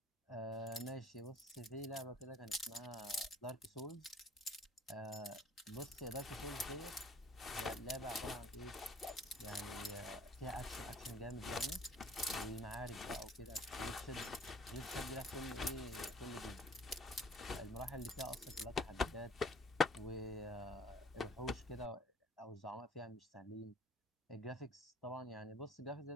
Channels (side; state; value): both; normal; correlation 0.53